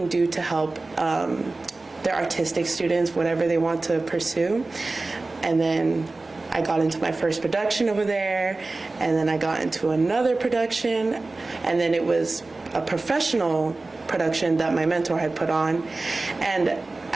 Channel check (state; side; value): quieter; left; 3.3 dB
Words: do to help their artistic students, whatever they want to pursue. And then I got into my first production over there, and then I got into another production, and then it was a professional production that my mentor had put on. And